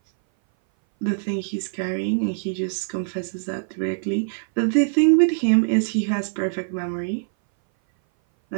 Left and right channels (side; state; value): left; silent; 59 dB below the other